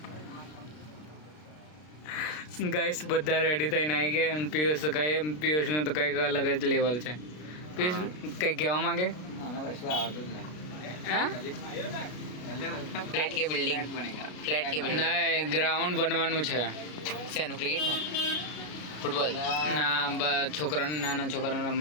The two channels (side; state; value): right; late; 33 ms